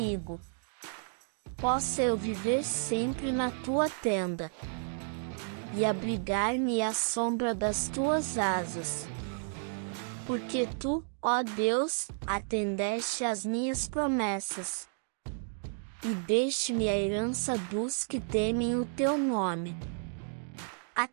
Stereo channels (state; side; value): silent; left; digital silence